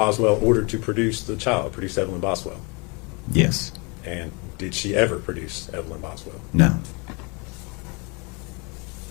ordered to produce the child, produce Evelyn Boswell? Yes. And did she ever produce Evelyn Boswell? No.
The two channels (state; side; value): quieter; right; 30.7 dB